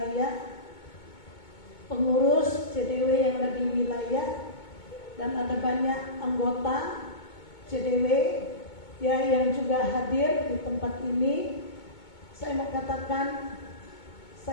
pengurus CDW yang ada di wilayah, dan ada banyak anggota CDW ya yang juga hadir di tempat ini. Saya mau katakan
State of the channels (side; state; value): right; late; 2.2 ms